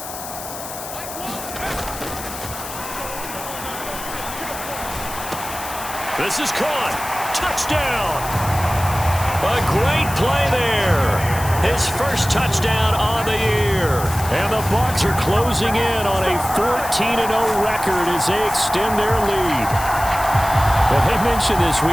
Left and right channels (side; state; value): left; noise; hiss, 11 dB below the sound